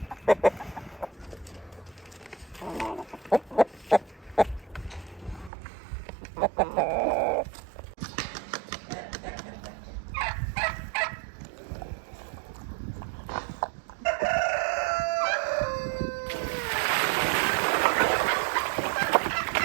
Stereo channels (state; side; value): drops out; left; at 5.5 s